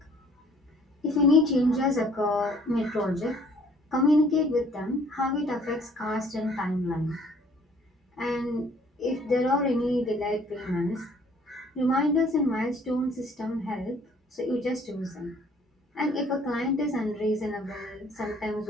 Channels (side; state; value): both; normal; correlation 0.58